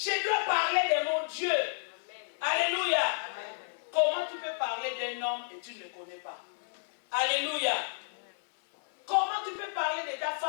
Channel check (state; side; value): silent; right; 57 dB below the other